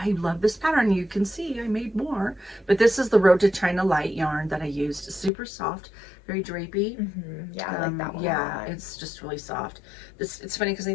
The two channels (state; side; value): drops out; right; at 5.3 s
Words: love this pattern. You can see I made more, but this is the Road to China Light yarn that I used. Super soft, very drapey. Yeah, I like that one. Yeah, it's just really soft. It's funny because